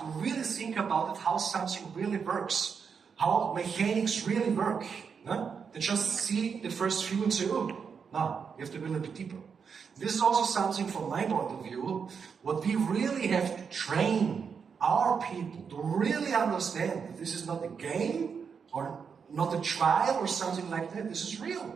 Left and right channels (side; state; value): left; quieter; 6.2 dB